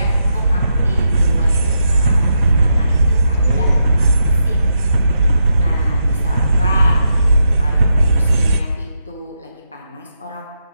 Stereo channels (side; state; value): both; inverted; correlation -0.83